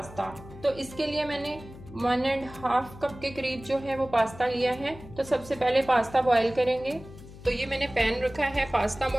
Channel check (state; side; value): noise; left; hum, 17 dB below the sound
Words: तो इसके लिए मैंने 1.5 कप के करीब जो है वो पास्ता लिया है। तो सबसे पहले पास्ता बॉईल करेंगे। तो ये मैंने पैन रखा है पास्ता